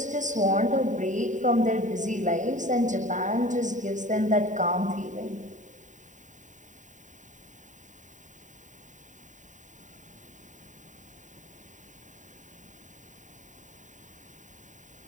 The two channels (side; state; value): left; late; 0.36 ms